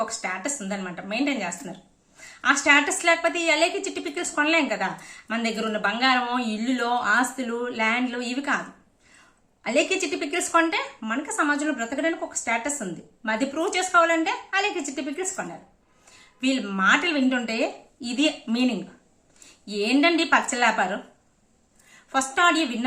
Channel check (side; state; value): both; identical; correlation 1.00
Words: ఒక స్టేటస్ ఉందన్నమాట, మెయింటైన్ చేస్తున్నారు. ఆ స్టేటస్ లేకపోతే ఈ అలేకే చిట్టి పికల్స్ కొనలేం కదా. మన దగ్గర ఉన్న బంగారమో, ఇల్లులో, ఆస్తులు, ల్యాండ్లు ఇవి కాదు. అలేకే చిట్టి పికల్స్ కొంటే మనకి సమాజంలో బ్రతకడానికి ఒక స్టేటస్ ఉంది. అది ప్రూవ్ చేసుకోవాలంటే అలేకే చిట్టి పికల్స్ కొన్నారు. వీళ్ళ మాటలు వింటుంటే ఇది మీనింగ్. ఏంటండి పచ్చలాపారు? ఫస్ట్ ఆడియో